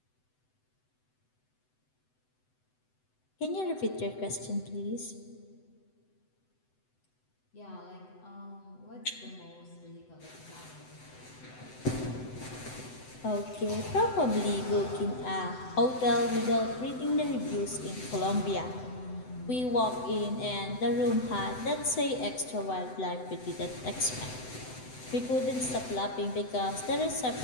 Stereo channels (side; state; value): right; late; 7.9 ms